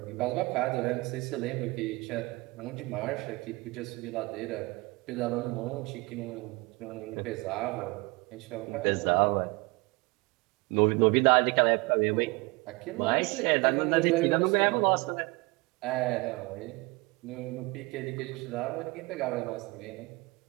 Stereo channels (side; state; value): left; quieter; 25.2 dB